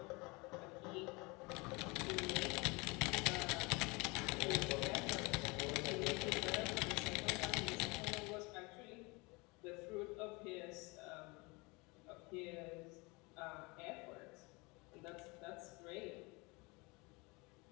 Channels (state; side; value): quieter; right; 26.6 dB